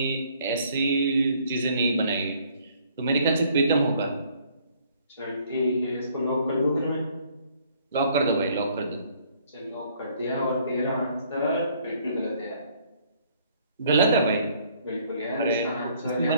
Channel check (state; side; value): inverted; both; correlation -0.62